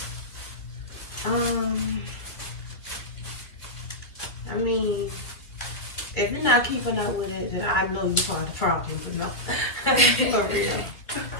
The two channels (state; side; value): late; right; 2.3 ms